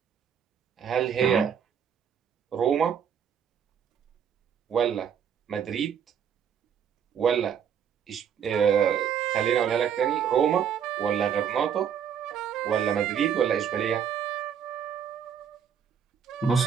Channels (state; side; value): quieter; left; 8.0 dB